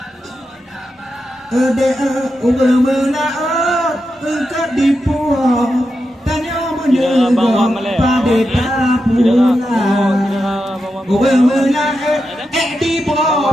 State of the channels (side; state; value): both; normal; correlation 0.88